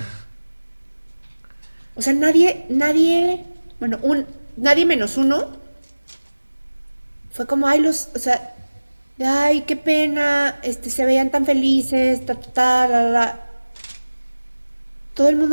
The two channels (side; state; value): both; inverted; correlation -1.00